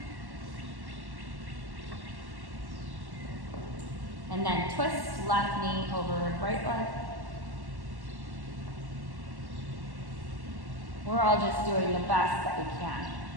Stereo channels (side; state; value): left; late; 1.1 ms